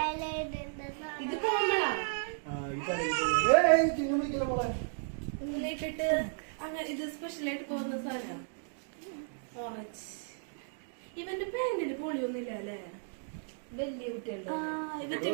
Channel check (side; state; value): left; silent; digital silence